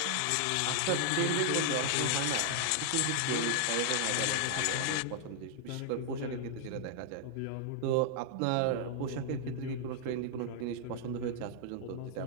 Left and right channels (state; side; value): different; both; correlation 0.00